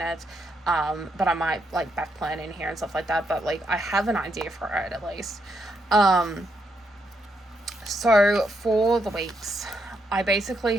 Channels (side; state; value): both; normal; correlation 0.78